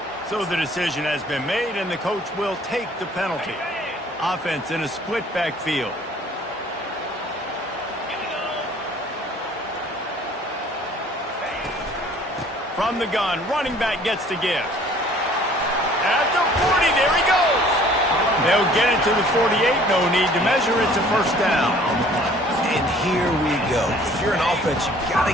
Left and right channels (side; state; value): both; normal; correlation 0.54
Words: So the decision has been made, and the coach will take the penalty. Offense in a split backfield. From the gun, running back gets to give. At the 40, there he goes. They'll get it to the 48, no need to measure it to first down. And here we go. If you're an offense, you got to